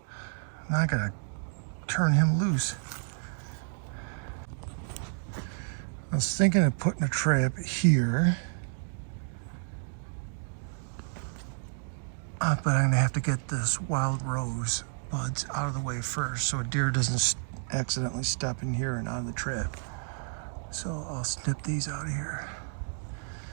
Now I gotta turn him loose. I was thinking of putting a trap here. But I'm gonna have to get this wild rose buds out of the way first so a deer doesn't accidentally step in here and out of the trap. So I'll snip these out of here.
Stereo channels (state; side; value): silent; left; digital silence